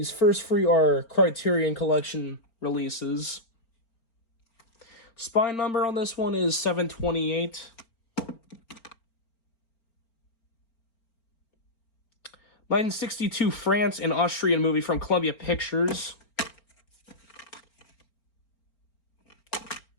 first 3 are Criterion Collection releases. Spine number on this one is 728. '1962 France and Austrian movie from Columbia Pictures.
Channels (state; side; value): late; right; 4.4 ms